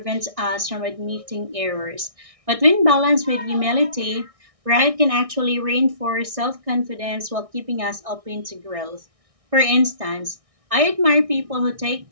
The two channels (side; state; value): left; late; 1.6 ms